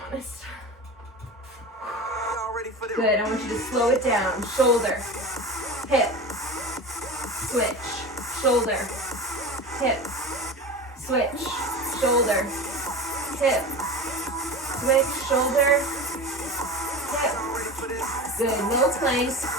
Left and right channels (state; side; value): normal; both; correlation 0.30